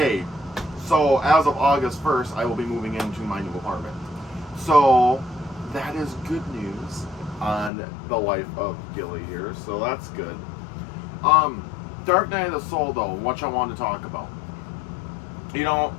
So as of August 1st, I will be moving into my new apartment. So that is good news on the life of Gilly here. So that's good. Dark Night of the Soul, though, what I want to talk about. You know,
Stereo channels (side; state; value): right; drops out; at 7.7 s